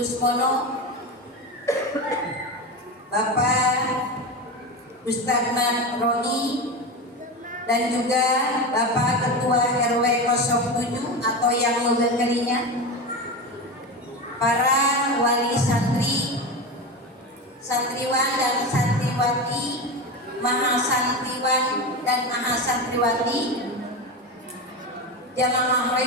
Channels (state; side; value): normal; both; correlation 0.21